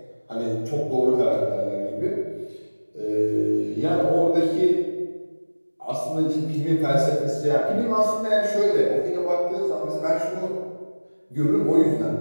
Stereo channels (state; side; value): inverted; both; correlation -1.00